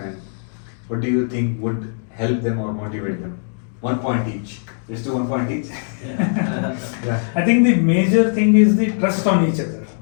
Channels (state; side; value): silent; right; digital silence